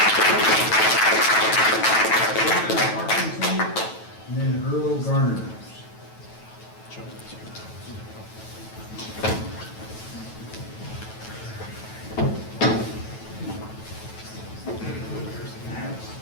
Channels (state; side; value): late; right; 9.2 ms